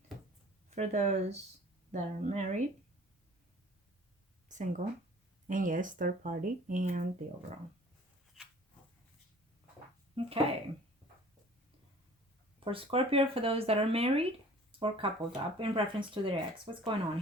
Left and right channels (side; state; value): both; normal; correlation 0.49